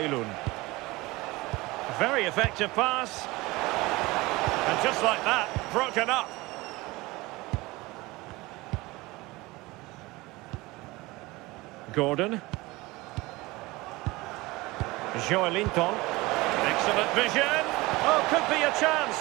Very effective pass. And just like that, broken up. Gordon. Joelinton. Excellent vision. Oh, could be a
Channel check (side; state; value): left; quieter; 21.5 dB